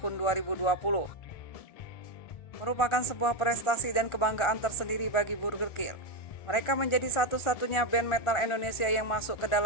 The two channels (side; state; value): right; late; 1.4 ms